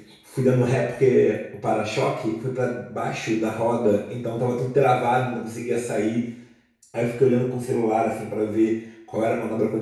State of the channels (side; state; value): both; identical; correlation 1.00